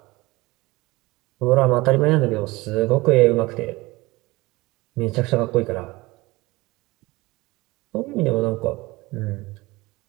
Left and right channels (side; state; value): left; quieter; 21.5 dB